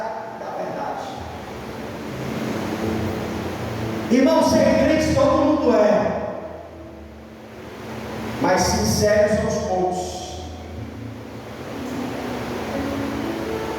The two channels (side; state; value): both; identical; correlation 1.00